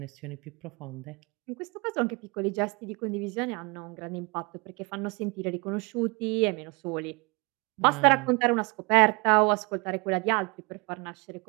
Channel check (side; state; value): left; quieter; 29.0 dB